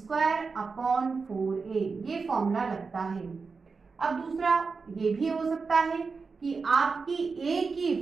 upon 4a, ये फॉर्मूला लगता है। अब दूसरा ये भी हो सकता है कि आपकी a की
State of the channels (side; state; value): left; quieter; 4.7 dB